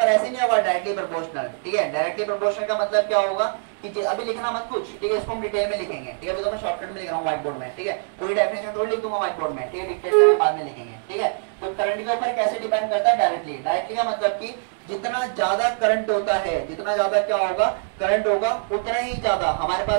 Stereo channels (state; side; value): silent; left; digital silence